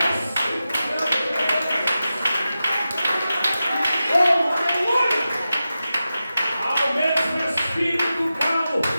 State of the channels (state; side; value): inverted; both; correlation -0.92